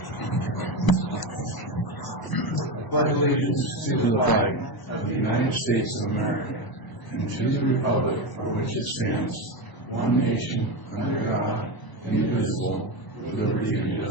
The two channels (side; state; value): right; late; 1.0 ms